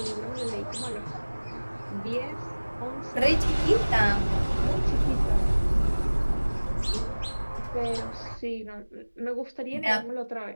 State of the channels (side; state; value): both; inverted; correlation -1.00